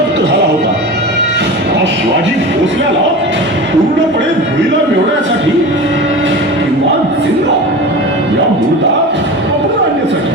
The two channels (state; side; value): normal; both; correlation 0.31